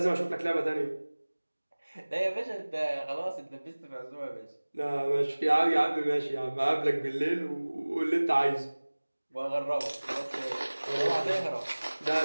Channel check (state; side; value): inverted; both; correlation -1.00